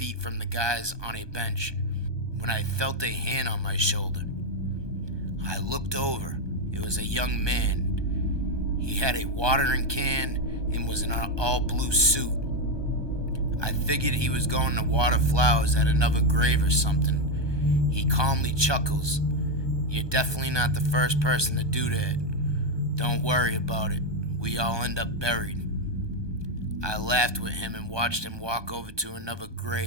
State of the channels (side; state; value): left; late; 1.2 ms